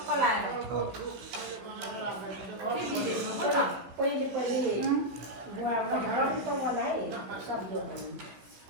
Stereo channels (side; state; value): left; late; 16 ms